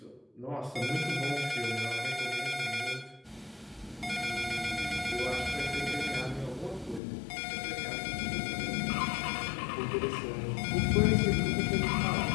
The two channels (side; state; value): right; drops out; at 7.0 s